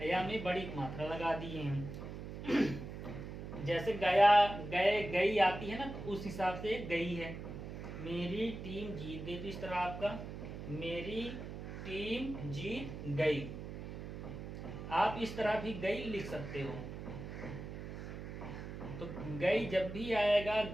या में बड़ी मात्रा लगा दिए हैं। जैसे गया, गए, गई आती है ना, तो उस हिसाब से गई है। मेरी टीम जीत गई, तो इस तरह आपका मेरी टीम जीत गई। आप इस तरह भी गई लिख सकते हो। तो गई जब भी आएगा,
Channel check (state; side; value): noise; right; hum, 8 dB below the sound